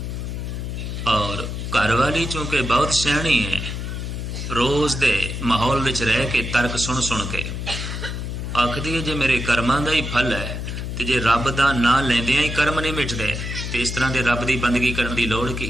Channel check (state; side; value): noise; left; hum, 5 dB below the sound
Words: ਔਰ ਘਰ ਵਾਲੀ ਚੂੰਕਿ ਬਹੁਤ ਸਿਆਣੀ ਹੈ, ਰੋਜ਼ ਦੇ ਮਾਹੌਲ ਵਿੱਚ ਰਹਿ ਕੇ ਤਰਕ ਸੁਣ ਸੁਣ ਕੇ ਆਖਦੀ ਹੈ ਜੇ ਮੇਰੇ ਕਰਮਾਂ ਦਾ ਹੀ ਫਲ ਹੈ ਤੇ ਜੇ ਰੱਬ ਦਾ ਨਾਂ ਲੈਂਦਿਆਂ ਹੀ ਕਰਮ ਨਹੀਂ ਮਿਟਦੇ ਤੇ ਇਸ ਤਰ੍ਹਾਂ ਦੇ ਰੱਬ ਦੀ ਬੰਦਗੀ ਕਰਨ ਦੀ ਲੋੜ